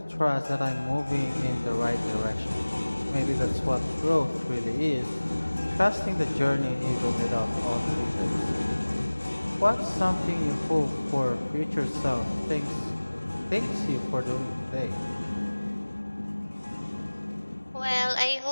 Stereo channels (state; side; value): inverted; both; correlation -1.00